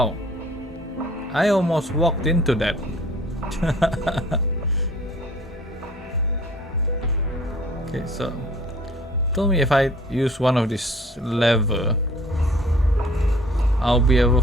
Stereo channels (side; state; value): both; normal; correlation 0.52